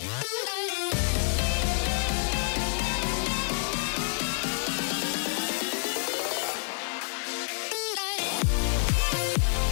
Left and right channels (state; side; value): silent; right; 59 dB below the other